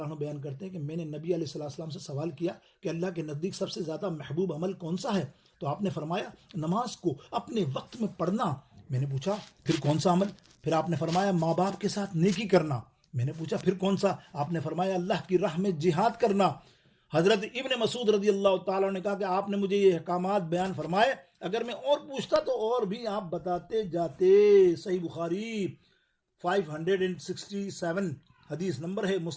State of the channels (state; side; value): identical; both; correlation 1.00